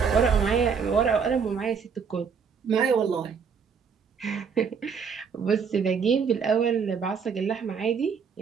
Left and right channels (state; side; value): quieter; left; 6.2 dB